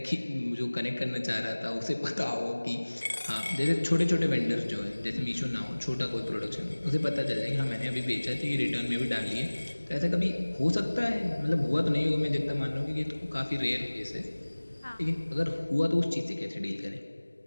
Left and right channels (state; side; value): inverted; both; correlation -1.00